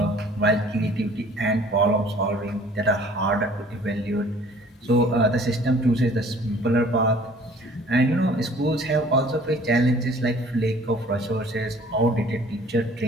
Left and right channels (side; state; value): both; normal; correlation 0.53